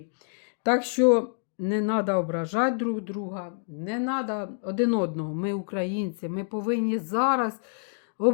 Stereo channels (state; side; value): silent; right; digital silence